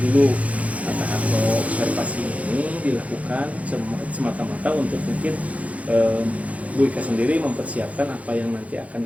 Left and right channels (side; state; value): left; late; 0.067 ms